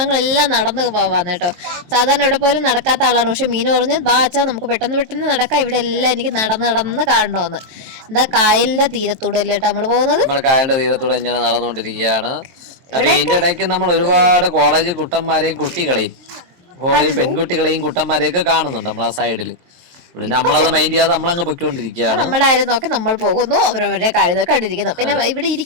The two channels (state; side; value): late; left; 23 ms